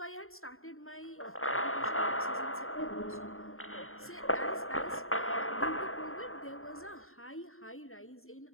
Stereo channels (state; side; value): late; right; 0.61 ms